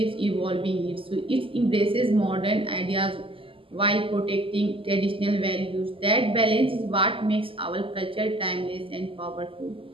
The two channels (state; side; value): late; left; 0.26 ms